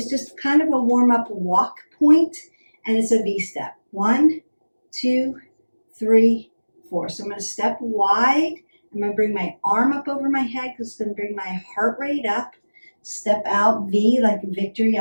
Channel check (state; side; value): inverted; both; correlation -1.00